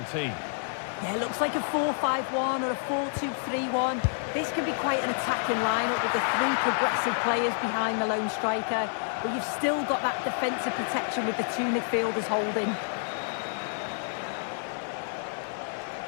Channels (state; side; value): silent; right; 59 dB below the other